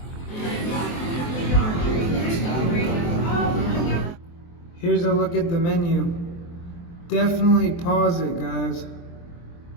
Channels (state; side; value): late; right; 23 ms